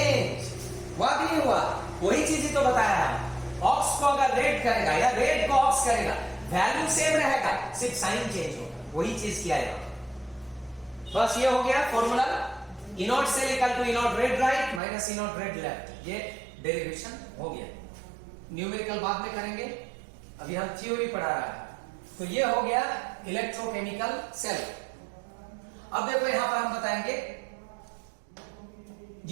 हुआ कि नहीं हुआ? वही चीज ही तो बताया है। ऑक्स को अगर रेड करेगा या रेड को ऑक्स करेगा वैल्यू सेम रहेगा, सिर्फ साइन चेंज होगा। वही चीज किया है। बस ये हो गया formula, e naught cell equal to e naught red right minus e naught red left. ये डेरिवेशन हो गया। न्यूमेरिकल बाद में करेंगे, अभी हम थ्योरी पढ़ा रहा है। तो ये हो गया इलेक्ट्रोकेमिकल सेल। अब देखो यहां पर हम बताएंगे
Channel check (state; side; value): drops out; left; at 14.8 s